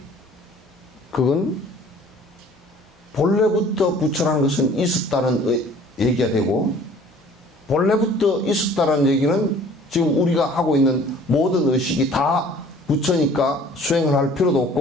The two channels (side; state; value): both; normal; correlation 0.51